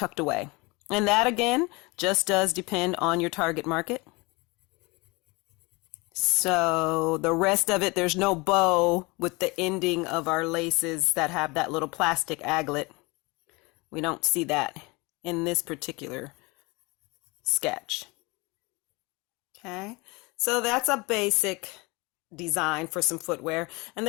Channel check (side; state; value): right; quieter; 25.8 dB